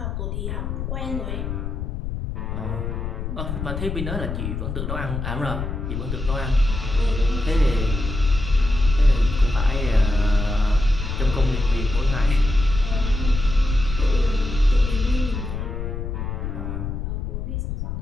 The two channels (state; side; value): noise; left; rumble, 4 dB below the sound